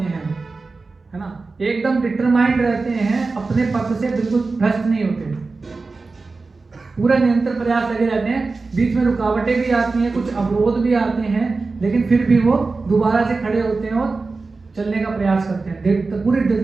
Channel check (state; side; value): quieter; left; 3.9 dB